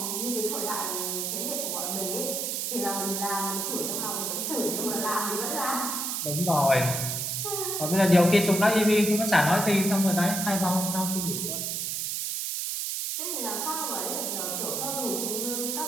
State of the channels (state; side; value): noise; right; hiss, 1 dB below the sound